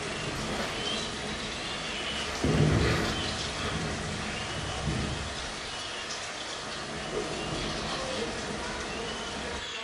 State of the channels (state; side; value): identical; both; correlation 1.00